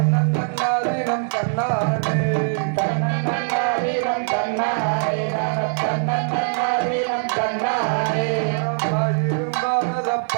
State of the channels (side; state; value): left; silent; digital silence